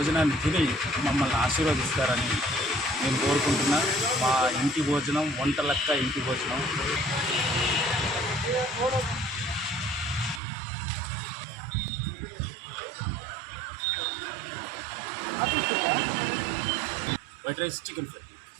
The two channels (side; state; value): left; drops out; at 10.4 s